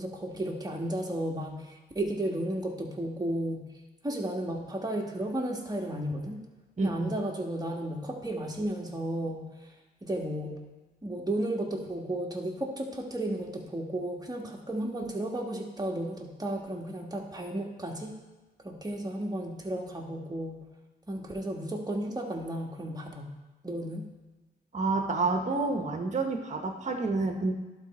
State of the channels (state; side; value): normal; both; correlation 0.67